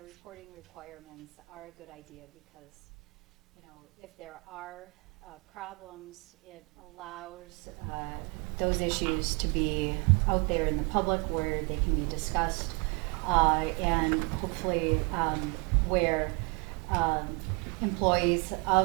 reporting requirements are a good idea because, if there are problems, it allows those issues to be out there in the public where they can be discussed, and hopefully where employees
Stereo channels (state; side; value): quieter; left; 31.4 dB